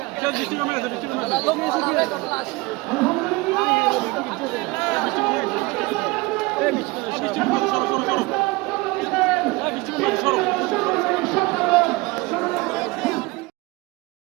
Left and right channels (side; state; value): left; quieter; 23.5 dB